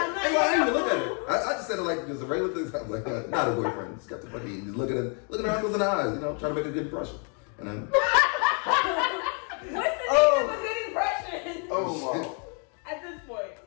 didn't even look at it. I just said it like just a regular thing. I was like, not a boyfriend. Just got the fucking, just looking at her uncles in the eyes, you know, trying to make a good impression. And then, What's the name of a good impression? Oh, wow. At this point.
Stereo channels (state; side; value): quieter; right; 39.7 dB